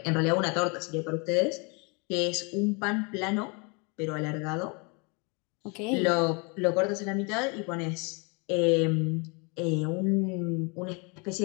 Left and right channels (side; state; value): right; quieter; 31.8 dB